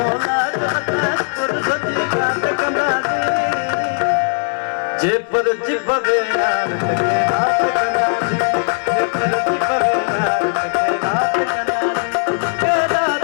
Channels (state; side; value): silent; right; 62 dB below the other